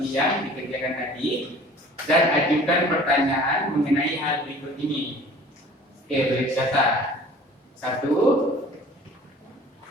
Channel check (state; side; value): normal; both; correlation 0.47